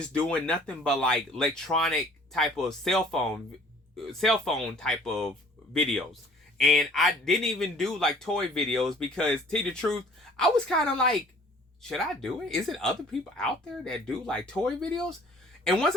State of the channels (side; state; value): both; normal; correlation 0.54